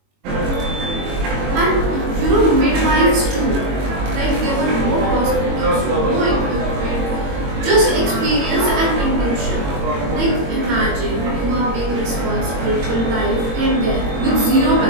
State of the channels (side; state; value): left; late; 22 ms